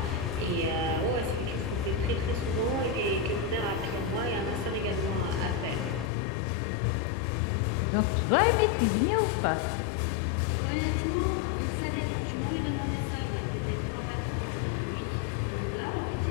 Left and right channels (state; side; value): drops out; right; at 6.1 s